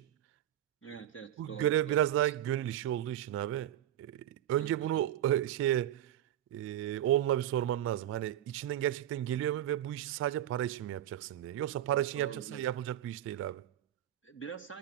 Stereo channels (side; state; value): left; quieter; 12.0 dB